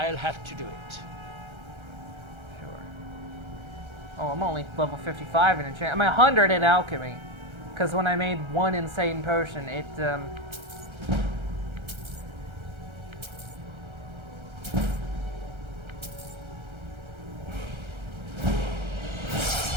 have to do it. Sure. Oh, I'm only level 55 in enchant. I'm 100 in alchemy. Because when I made one insane potion, it,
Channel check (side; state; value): left; late; 1.3 ms